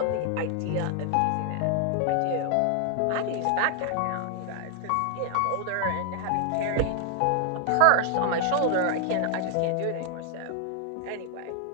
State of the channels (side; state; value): both; different; correlation 0.00